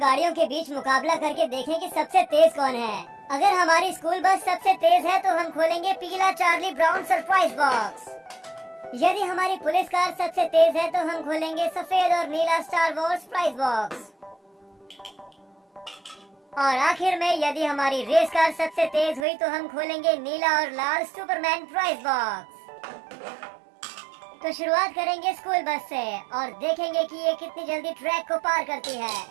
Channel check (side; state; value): left; drops out; at 19.2 s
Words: गाड़ियों के बीच मुकाबला करके देखें कि सबसे तेज कौन है। अगर हमारी स्कूल बस सबसे तेज है तो हम खोलेंगे पीला चार्ली ब्राउन सरप्राइज बॉक्स। यदि हमारी पुलिस कार सबसे तेज है तो हम खोलेंगे सफेद और नीला स्टार वॉर्स प्राइज बॉक्स। और आखिर में यदि हमारी रेस कार सबसे तेज हुई तो हम खोलेंगे नीला और लाल सुपरमैन प्राइज बॉक्स। तो शुरुआत करेंगे स्कूल बस से और देखेंगे कि ये कितनी जल्दी ट्रैक को पार करती है।